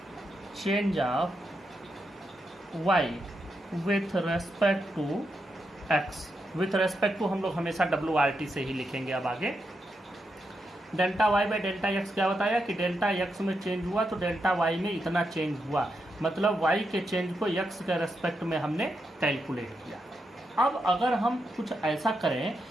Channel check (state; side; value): normal; both; correlation 0.84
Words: change of y with respect to x। with respect to हम लोग हमेशा WRT से ही लिखेंगे। अब आगे delta y by delta x क्या बताया कि डेल्टा x में चेंज हुआ तो डेल्टा y में इतना चेंज हुआ, मतलब y के चेंज को x के रेस्पेक्ट में हमने कैलकुलेट किया। अब अगर हम कुछ ऐसा करें